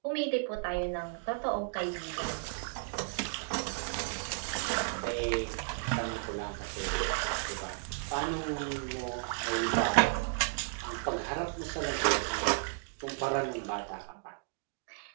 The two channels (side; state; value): left; silent; digital silence